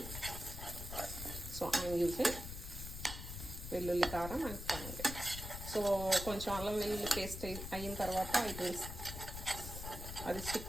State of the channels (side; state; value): left; noise; rumble, 8 dB below the sound